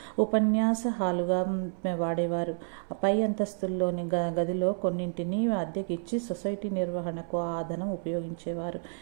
ఉపన్యాస హాలుగా వాడేవారు. పై అంతస్తుల్లోని గదిలో కొన్నింటిని అద్దెకిచ్చి సొసైటీ నిర్వహణకు ఆ ధనం ఉపయోగించేవారు.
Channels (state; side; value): silent; left; 58 dB below the other